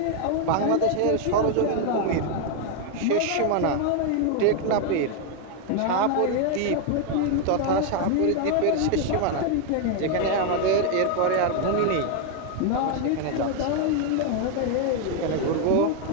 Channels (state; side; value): different; both; correlation 0.01